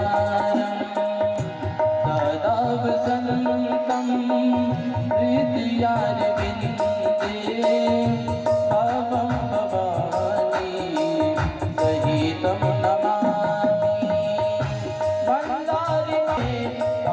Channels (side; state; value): both; identical; correlation 1.00